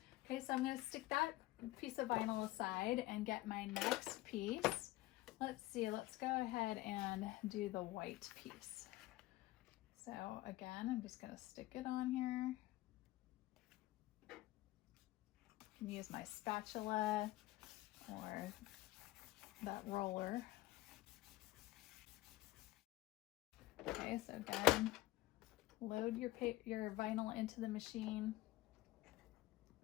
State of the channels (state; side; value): quieter; right; 17.7 dB